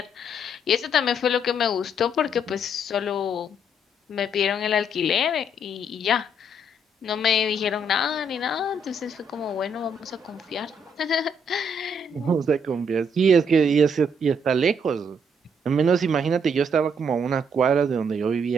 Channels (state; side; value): normal; both; correlation 0.70